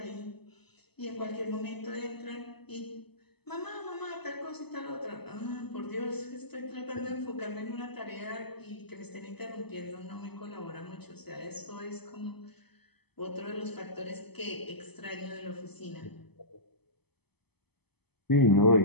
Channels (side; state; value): right; late; 0.98 ms